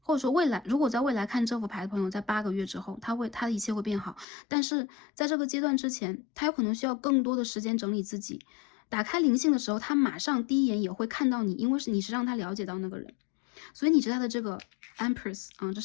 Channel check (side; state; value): right; drops out; at 4.2 s